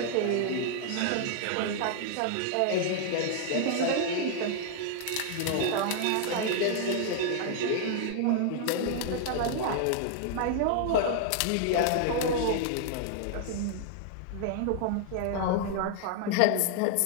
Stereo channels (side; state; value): both; different; correlation 0.00